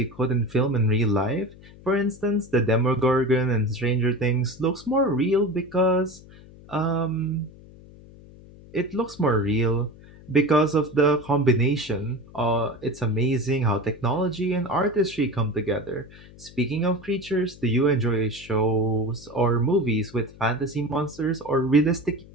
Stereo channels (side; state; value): left; noise; hum, 21 dB below the sound